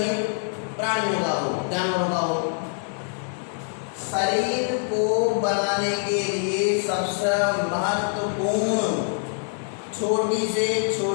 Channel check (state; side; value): silent; right; 62 dB below the other